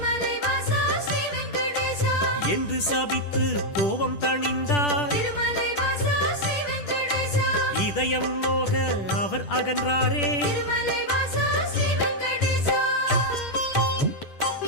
வாசா ஸ்ரீ வெங்கடேசா என்று சபித்து கோபம் தணிந்தார். திருமலை வாசா ஸ்ரீ வெங்கடேசா இதயம் நோக அவர் அகன்றாரே. திருமலை வாசா ஸ்ரீ வெங்கடேசா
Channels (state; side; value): late; right; 10 ms